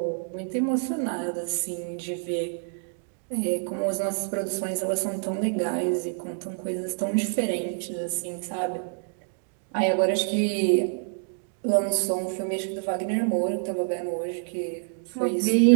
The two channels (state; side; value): silent; left; digital silence